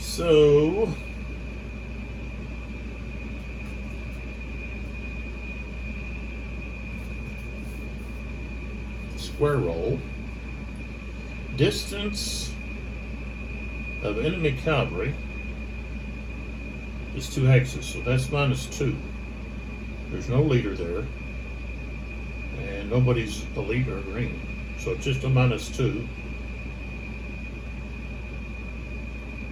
square roll. Distance of enemy cavalry is 2 hexes, so that's -2. There's no leader there, and nobody's a leader green. So it's just a -2.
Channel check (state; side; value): identical; both; correlation 1.00